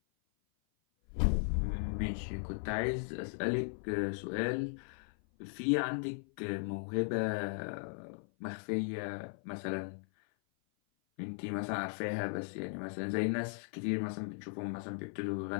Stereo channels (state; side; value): silent; right; 53 dB below the other